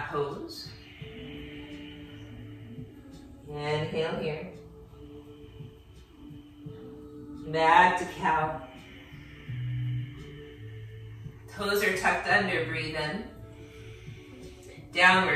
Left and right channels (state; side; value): identical; both; correlation 1.00